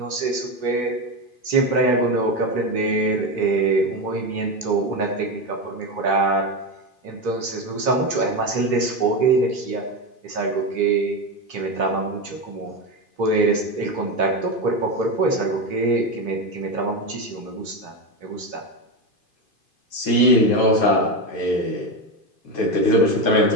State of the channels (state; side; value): late; left; 2.5 ms